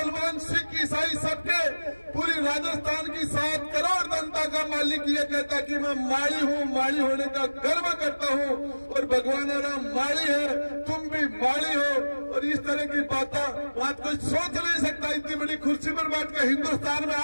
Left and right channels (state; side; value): inverted; both; correlation -1.00